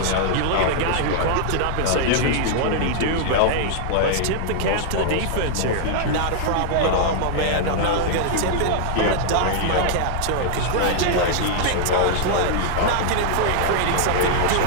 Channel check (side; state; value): both; different; correlation -0.01